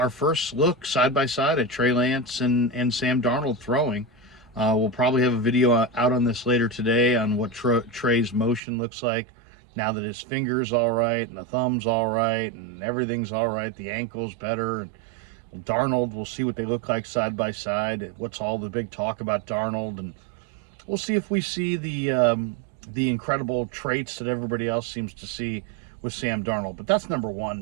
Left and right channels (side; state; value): left; drops out; at 8.6 s